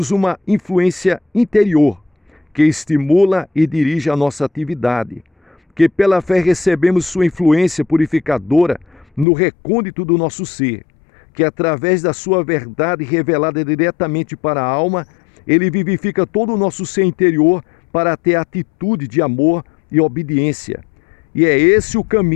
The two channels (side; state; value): right; drops out; at 9.2 s